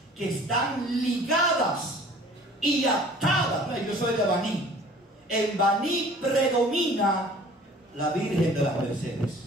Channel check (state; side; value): normal; both; correlation 0.49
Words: que están ligadas y atada. No, yo soy de Baní. En Baní predomina la Virgen de las